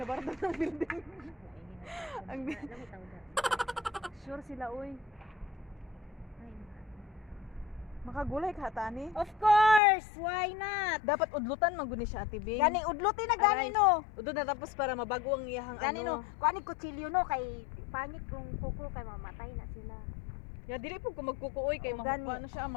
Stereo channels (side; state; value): right; drops out; at 9.8 s